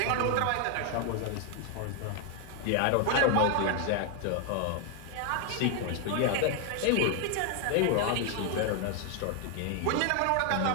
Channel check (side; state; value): both; different; correlation 0.00